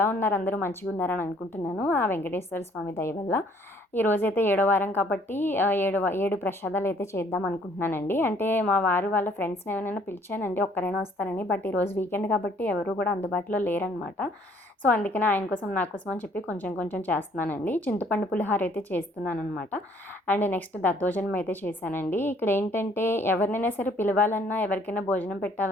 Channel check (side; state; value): both; normal; correlation 0.61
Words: ఉన్నారు? అందరూ మంచిగా ఉన్నారని అనుకుంటున్నాను. ఆ వెంకటేశ్వర స్వామి దయ వల్ల ఈరోజైతే 7వ వారం కాబట్టి 7 ప్రసాదాలు అయితే చేద్దాం అనుకుంటున్నానండి. అంటే మా వారు వాళ్ళ ఫ్రెండ్స్ని ఏమైనా పిలిచానండి, ఒక్కరైనా వస్తారని. బట్ ఈరోజు వీకెండ్ కాబట్టి ఎవరు కూడా అందుబాటులో లేరనమాట. సో అందుకనే ఆయన కోసం నా కోసం అని చెప్పి కొంచెం కొంచెం చేస్తున్నానండి. చింతపండు పులిహార అయితే చేస్తున్నానమాట. అండ్ నెక్స్ట్ దద్దోజనం అయితే చేశానండి. ఇక్కడ ఏంటంటే ఎవరినైనా సరే పిలవాలన్నా, ఎవరికైనా భోజనం